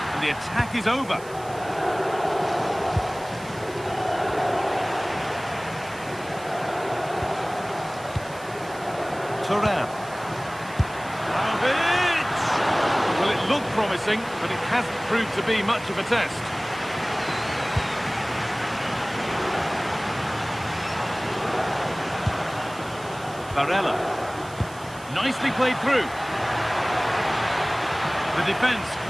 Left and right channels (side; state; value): right; noise; hiss, 20 dB below the sound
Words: And the attack is over. Turan. Well, it looked promising, but it hasn't proved to be much of a test. Barella. Nicely played through. The defence